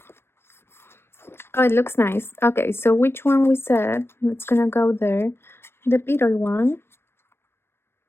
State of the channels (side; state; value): right; late; 0.12 ms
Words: Oh, it looks nice. Okay, so which one we said? It's gonna go there. The beetle one.